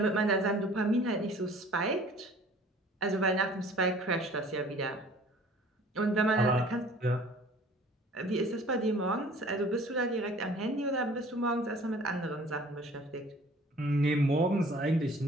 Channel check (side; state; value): both; normal; correlation 0.50